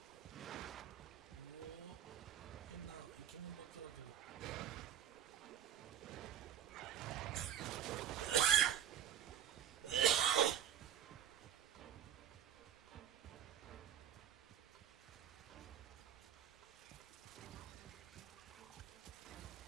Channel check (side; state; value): left; quieter; 9.8 dB